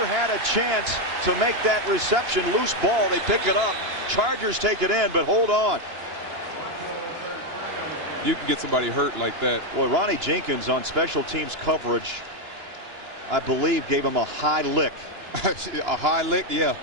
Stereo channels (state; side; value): late; left; 2.9 ms